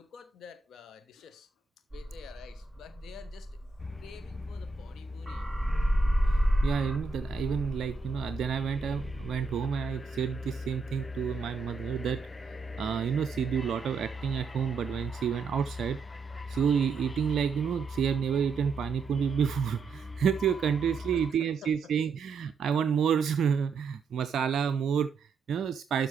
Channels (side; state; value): left; quieter; 4.8 dB